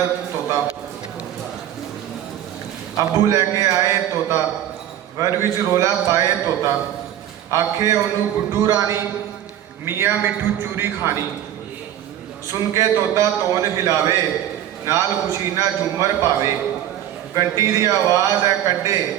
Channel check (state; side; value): quieter; left; 11.4 dB